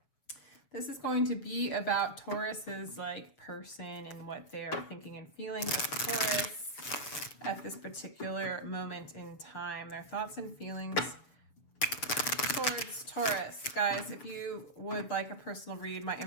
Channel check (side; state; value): right; late; 7.1 ms